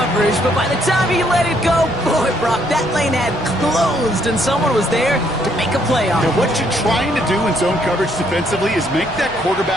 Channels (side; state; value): both; normal; correlation 0.70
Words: but by the time he let it go, boy, Brock, that lane had closed, and someone was there to make a play on it. Now, what you're trying to do in zone coverage defensively is make that